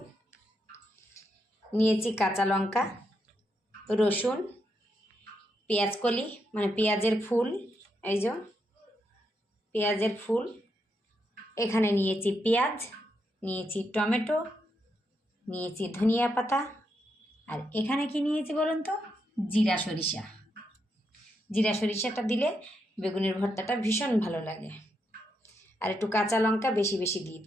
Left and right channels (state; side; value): normal; both; correlation 0.81